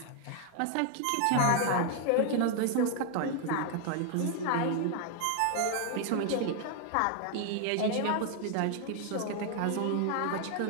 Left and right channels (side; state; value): both; different; correlation 0.00